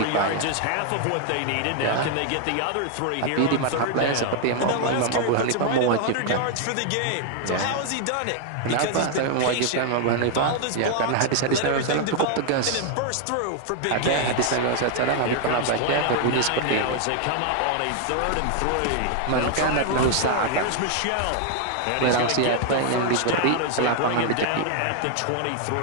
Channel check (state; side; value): different; both; correlation 0.00